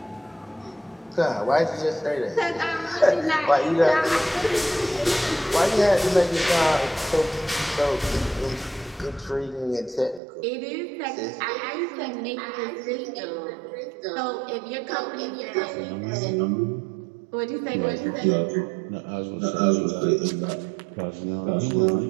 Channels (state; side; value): drops out; left; at 10.2 s